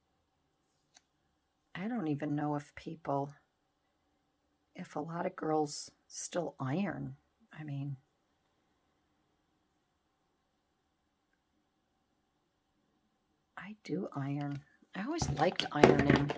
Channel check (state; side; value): identical; both; correlation 1.00